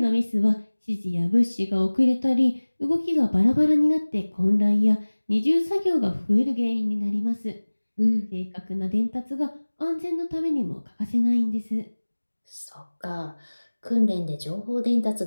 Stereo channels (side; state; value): both; inverted; correlation -1.00